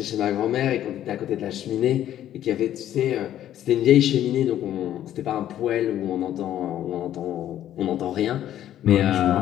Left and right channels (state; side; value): quieter; right; 11.7 dB